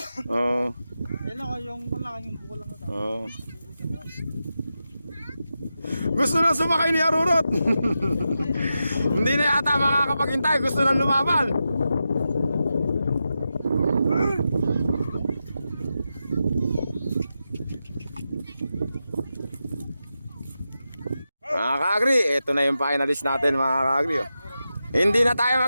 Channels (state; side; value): inverted; both; correlation -0.89